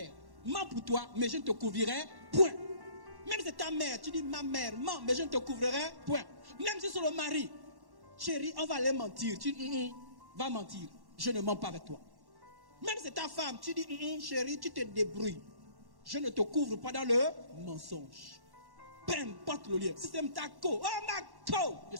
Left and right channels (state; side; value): late; left; 1.1 ms